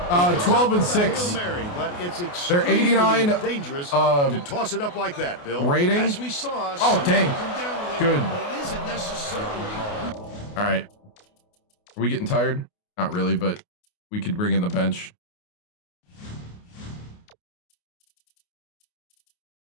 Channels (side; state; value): right; late; 28 ms